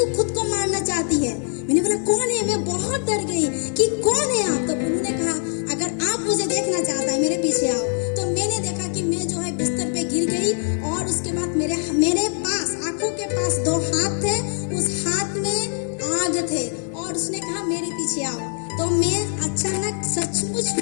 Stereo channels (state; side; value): silent; right; 57 dB below the other